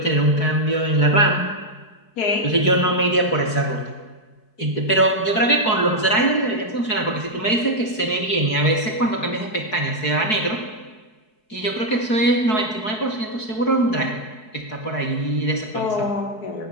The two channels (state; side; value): late; right; 4.6 ms